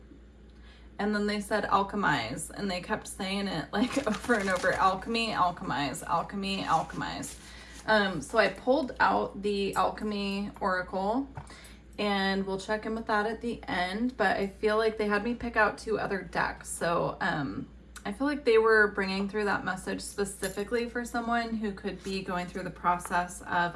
And then they said alchemize, and they kept saying it like over and over, alchemy, alchemize, alchemy, alchemize. So I pulled out the alchemy oracle, and we'll check in with that at the end, but I feel like they had me pick out 2 other decks. So I feel like they were bringing through that message specifically for someone who could be going through the process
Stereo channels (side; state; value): both; identical; correlation 1.00